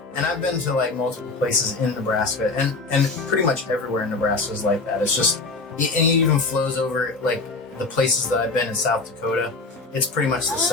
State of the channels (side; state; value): right; quieter; 3.7 dB